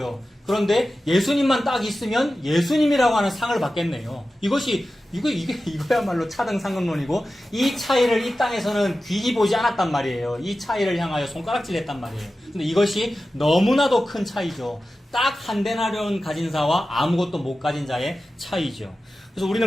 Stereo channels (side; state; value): both; normal; correlation 0.94